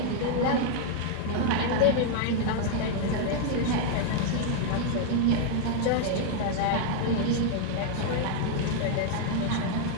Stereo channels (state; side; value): different; both; correlation 0.00